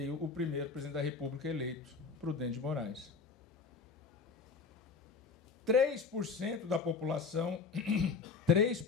o primeiro presidente da República eleito, Prudente de Moraes. 3% da população,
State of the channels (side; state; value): right; quieter; 5.0 dB